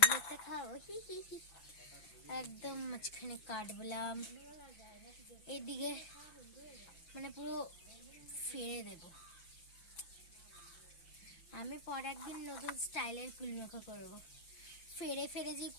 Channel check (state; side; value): late; right; 5.8 ms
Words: একটা খাও, হি হি হি। একদম মাঝখানে কাটবলাম, এইদিকে মানে পুরো ফেলে দেব। আমি পর একদিন নতুন স্টাইলের কুলমাখা করবো। ফেরে ফেরে যে